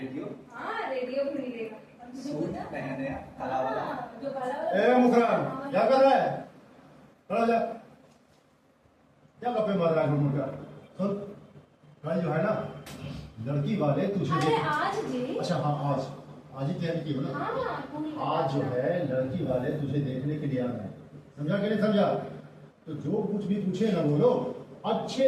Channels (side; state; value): both; identical; correlation 1.00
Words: हाँ रेडियो भी मिलेगा। और तुझे सूट पता? नया नया काला वाला। हाँ, जो काला वाला। ए मुखरान क्या कर रहा है? खड़ा हो जा। क्या गप्पे मार रहा है घूम कर? सुन, कल जो है ना लड़की वाले तुझे अरे आज जी। अच्छा हाँ आज आज ही तैयारी की हो ना? हाँ पूरी आज जो है लड़की वाले तुझे देखने के लिए आ रहे हैं, समझा कि नहीं समझा? तो जो कुछ भी पूछे ना बोलो,